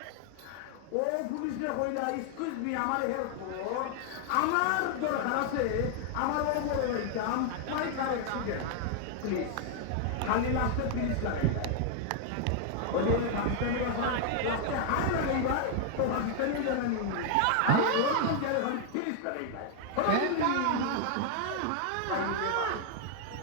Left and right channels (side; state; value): both; different; correlation 0.00